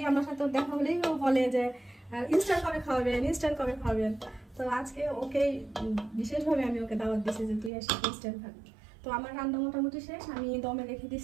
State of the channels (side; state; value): left; drops out; at 7.7 s